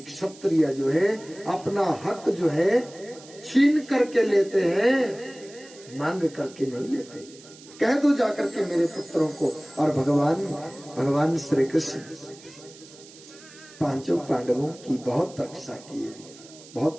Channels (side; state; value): right; noise; hiss, 21 dB below the sound